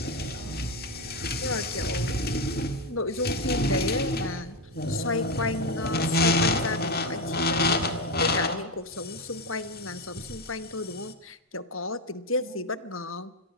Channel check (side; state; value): both; normal; correlation 0.10